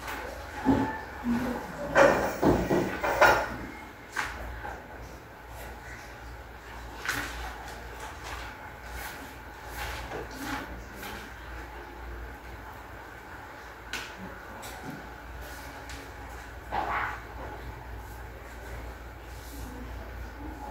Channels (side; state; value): both; identical; correlation 1.00